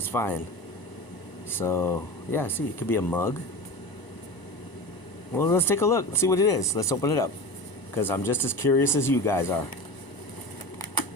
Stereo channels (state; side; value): late; right; 1.0 ms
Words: fine. So, yeah, see, it could be a mug. Well, let's take a look. Let's see what it is. Let's open it up. Because I'm just as curious as you guys are.